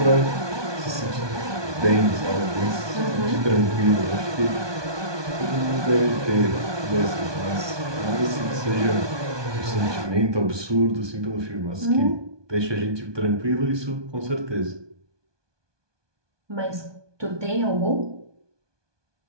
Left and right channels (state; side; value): late; left; 1.2 ms